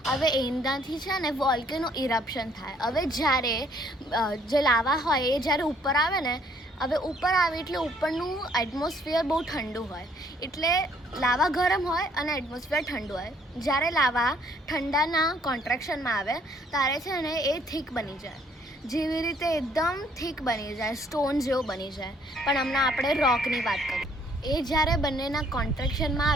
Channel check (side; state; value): both; normal; correlation 0.64